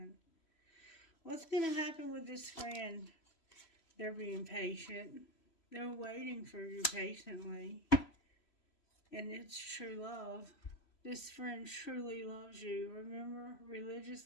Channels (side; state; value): right; late; 3.0 ms